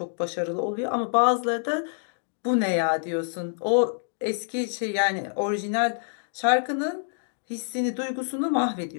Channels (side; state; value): right; silent; digital silence